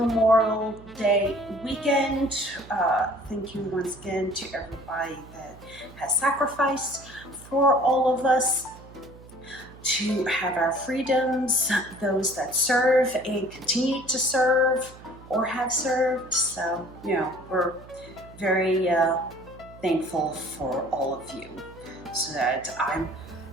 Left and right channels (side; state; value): right; noise; hum, 20 dB below the sound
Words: Day weekend. Thank you once again to everybody that has sacrificed for all of us to have our freedoms, those that serve and continue to serve or have served. So, we're very thankful for all of you so that I'm